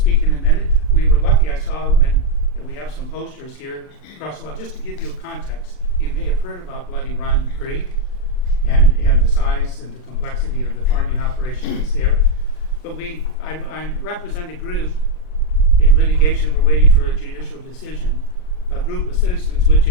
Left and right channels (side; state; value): right; late; 39 ms